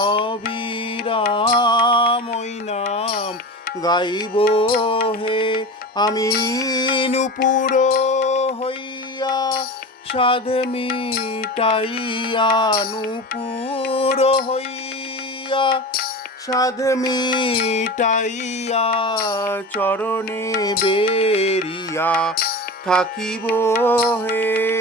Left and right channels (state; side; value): normal; both; correlation 0.29